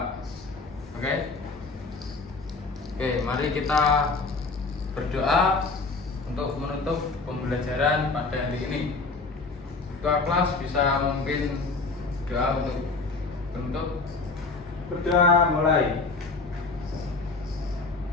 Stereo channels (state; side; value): quieter; right; 3.9 dB